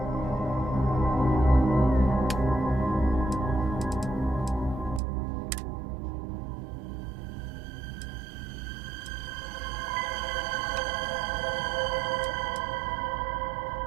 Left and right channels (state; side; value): drops out; left; at 5.0 s